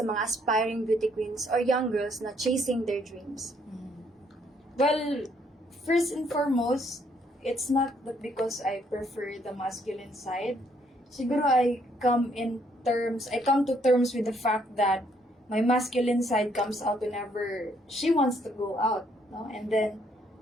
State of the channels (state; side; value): normal; both; correlation 0.69